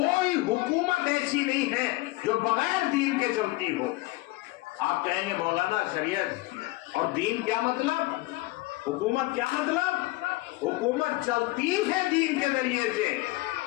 حکومت ایسی نہیں ہے جو بغیر دین کے چلتی ہو۔ آپ کہیں گے مولانا شریعت اور دین کیا مطلب، حکومت کیا مطلب؟ حکومت چلتی ہے دین کے ذریعے سے،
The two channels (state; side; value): quieter; right; 20.5 dB